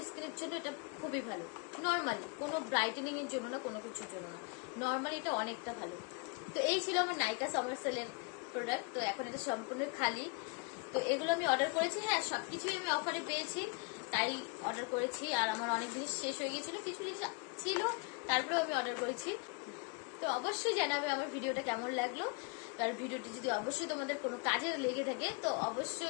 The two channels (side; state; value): right; quieter; 30.7 dB